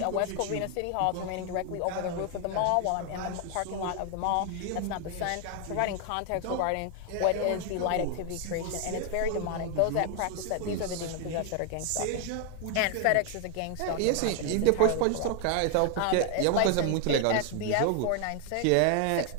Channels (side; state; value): both; different; correlation 0.00